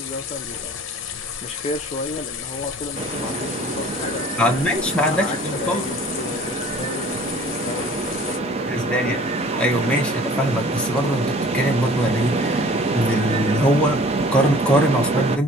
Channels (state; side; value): normal; both; correlation 0.49